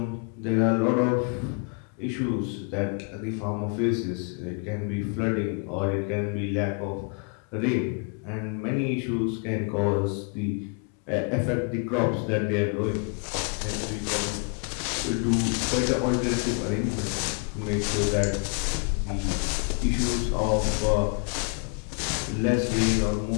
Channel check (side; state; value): right; quieter; 37.9 dB